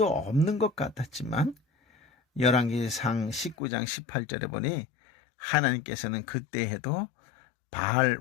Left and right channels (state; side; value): drops out; right; at 3.6 s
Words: 없는 것 같았지만 열왕기상 19장 18절에 보니 하나님께서는 그때 해도 바알